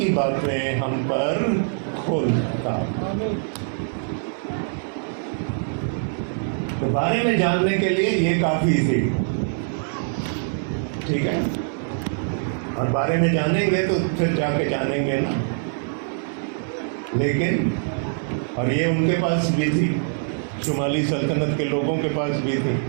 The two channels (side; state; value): left; silent; digital silence